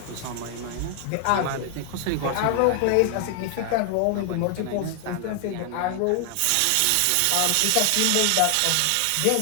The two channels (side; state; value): both; different; correlation 0.00